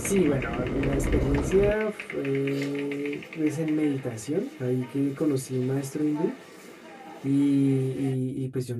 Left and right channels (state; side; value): identical; both; correlation 1.00